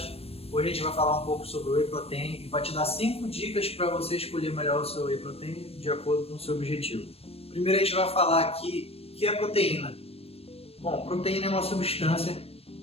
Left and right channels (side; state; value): right; late; 0.28 ms